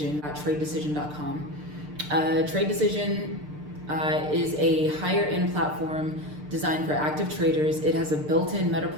at TradeDecision.com. Trade Decision is a higher-end platform designed for active traders. It has a built-in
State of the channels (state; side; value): late; left; 6.7 ms